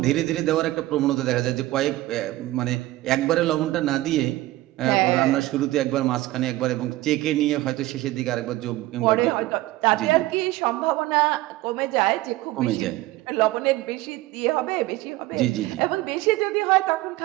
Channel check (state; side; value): quieter; left; 17.5 dB